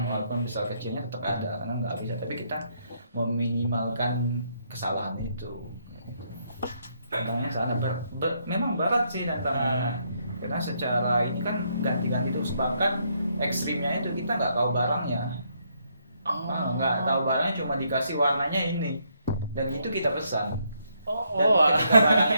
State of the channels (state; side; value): inverted; both; correlation -0.74